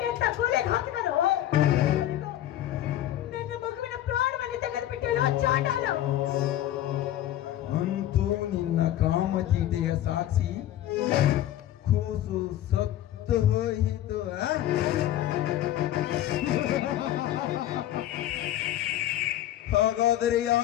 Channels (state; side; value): quieter; right; 12.8 dB